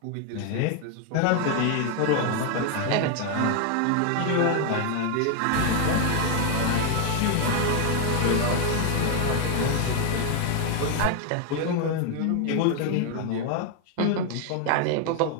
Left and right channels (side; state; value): both; different; correlation 0.00